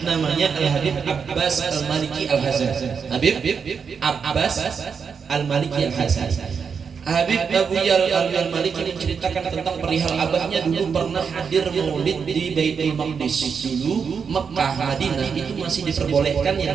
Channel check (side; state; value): left; quieter; 6.2 dB